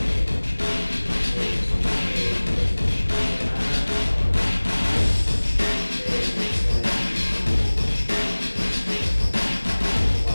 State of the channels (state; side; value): inverted; both; correlation -1.00